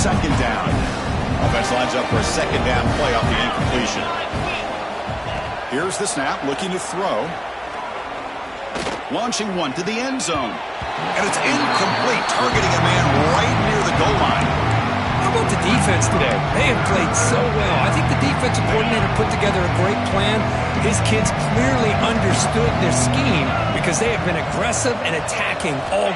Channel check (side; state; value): both; identical; correlation 1.00